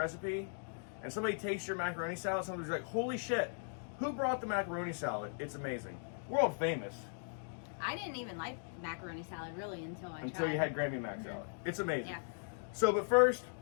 and somebody tastes your macaroni salad, somebody's like, holy shit, who brought the macaroni salad? It's amazing. World famous. I didn't even like macaroni salad really until you had Grammy Mac salad. It's amazing. Yeah. So, but first,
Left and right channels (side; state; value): right; silent; digital silence